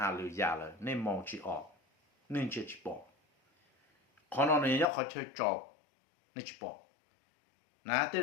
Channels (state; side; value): drops out; right; at 4.9 s